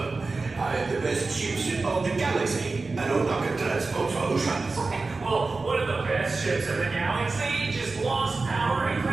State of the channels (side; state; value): left; quieter; 3.8 dB